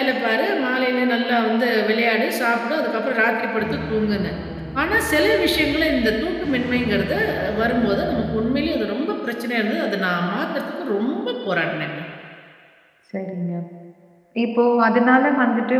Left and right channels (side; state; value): both; identical; correlation 1.00